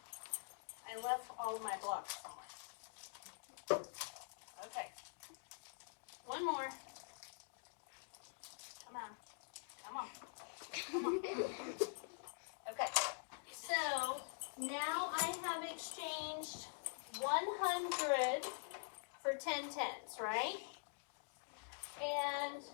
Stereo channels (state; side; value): silent; right; digital silence